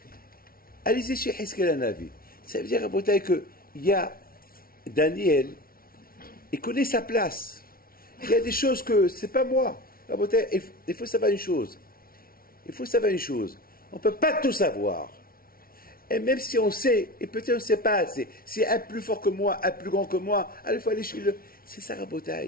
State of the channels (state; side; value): late; right; 0.43 ms